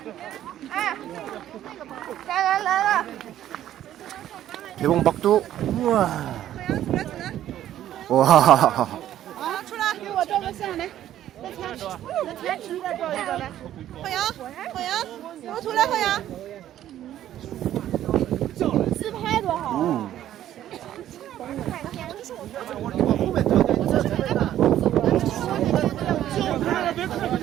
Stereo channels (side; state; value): left; quieter; 12.1 dB